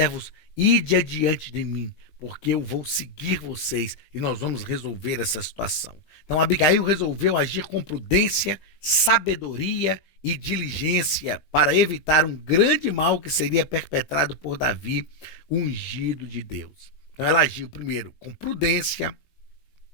ide adiante de mim, porque eu vou seguir vocês e nós vamos resolver essa situação. Então Abigail resolveu agir com prudência, sabedoria e diligência para evitar um grande mal que seria perpetrado por Davi, ungido de Deus. Então ela agiu primeiro com prudência,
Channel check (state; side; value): late; right; 20 ms